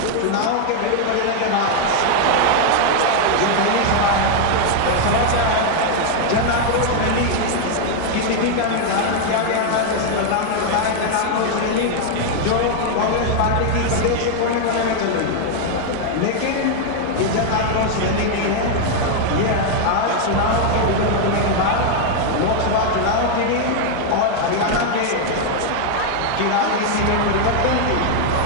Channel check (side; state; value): both; different; correlation 0.00